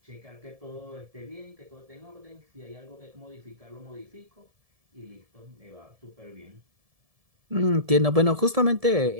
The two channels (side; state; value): left; late; 1.7 ms